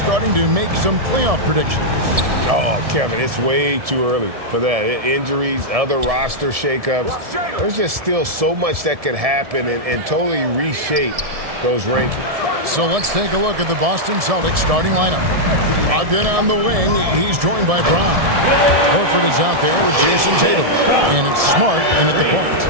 to make some playoff predictions? Oh, Kevin, it's way too early for that. Injuries, other roster shakeups. There's just still so much that could happen and totally reshape those rankings. So let's take a look at the Boston Celtics starting lineup. Ogden on the wing. He's joined by Brown. Horford is out there with Jason Tatum. And it's Smart in at the point.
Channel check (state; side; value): late; left; 1.7 ms